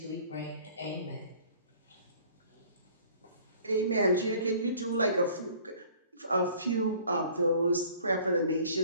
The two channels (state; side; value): inverted; both; correlation -0.52